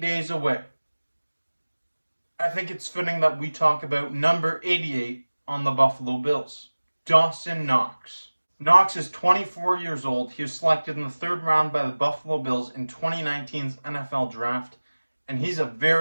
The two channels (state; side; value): inverted; both; correlation -1.00